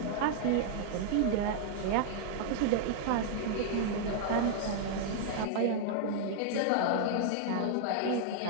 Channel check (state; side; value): different; both; correlation -0.01